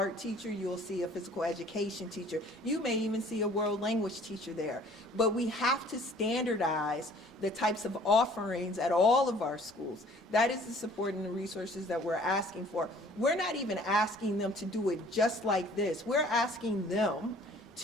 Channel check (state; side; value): normal; both; correlation 0.54